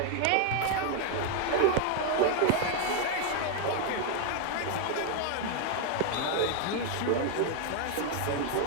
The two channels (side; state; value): both; different; correlation 0.00